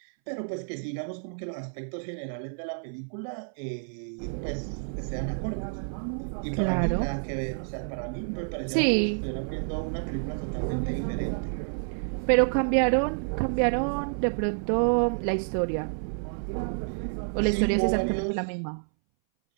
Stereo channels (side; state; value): left; silent; 59 dB below the other